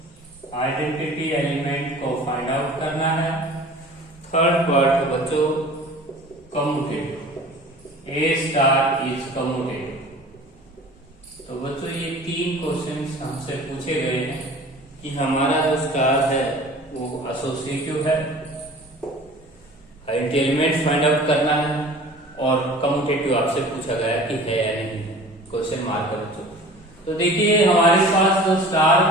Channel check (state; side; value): normal; both; correlation 0.43